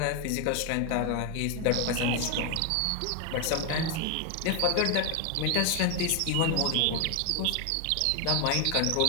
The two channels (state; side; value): different; both; correlation 0.01